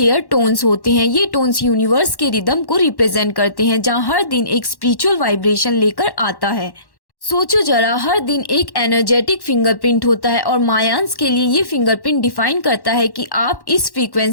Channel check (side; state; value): right; late; 1.1 ms